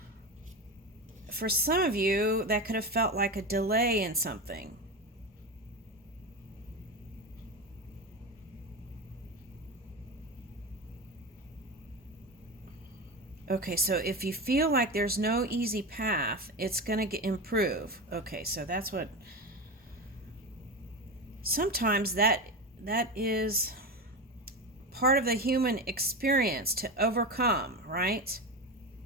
for some of you, that could have felt like a delay in something. Okay, so if you feel like there's no easy path, it's going to improve. Okay, so that's what... Sometimes that is part of the human experience to overcome, right?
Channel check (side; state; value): both; normal; correlation 0.21